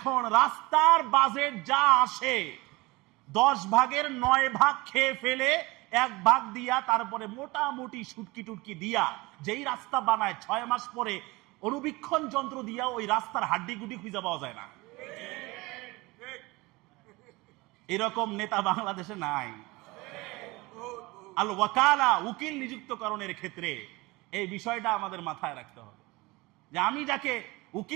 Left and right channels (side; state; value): left; quieter; 22.6 dB